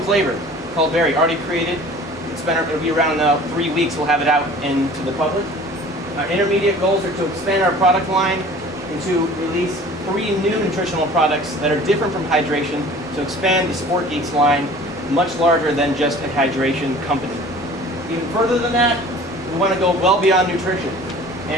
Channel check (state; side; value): normal; both; correlation 0.45